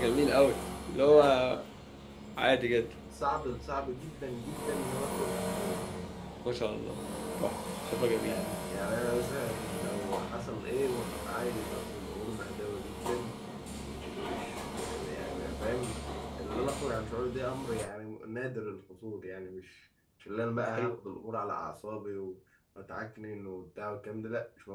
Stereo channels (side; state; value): both; identical; correlation 1.00